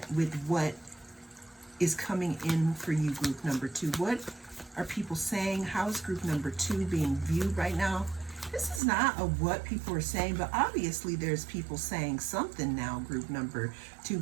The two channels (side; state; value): left; drops out; at 8.8 s